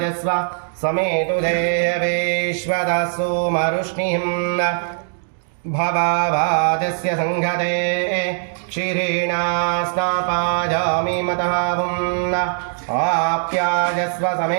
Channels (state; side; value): silent; left; 61 dB below the other